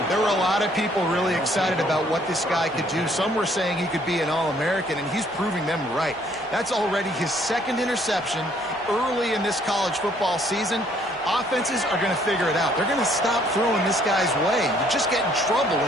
There were a lot of people really excited about what this guy could do. Some were saying he could be an All-American, and he's proving them right. That's already his 2nd interception early in this college football season. Offenses are going to figure it out. They're going to stop throwing this guy's way. You just get in trouble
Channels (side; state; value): both; normal; correlation 0.64